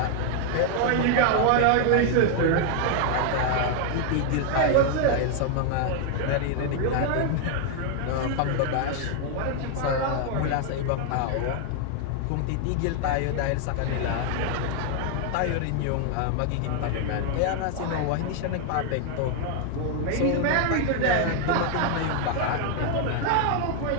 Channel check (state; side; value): different; both; correlation 0.00